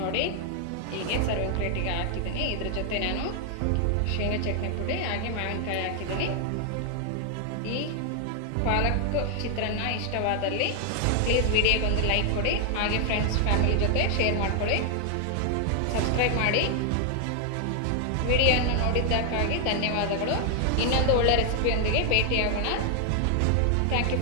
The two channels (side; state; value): both; different; correlation 0.00